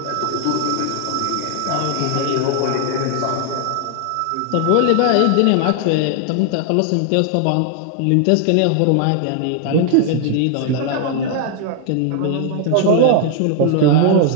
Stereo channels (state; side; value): different; both; correlation 0.00